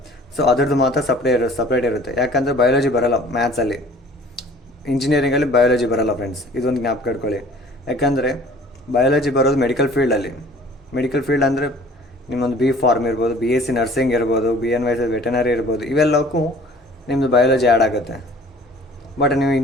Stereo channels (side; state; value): both; normal; correlation 0.50